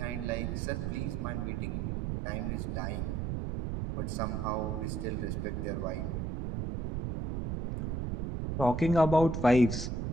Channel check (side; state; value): right; noise; rumble, 2 dB below the sound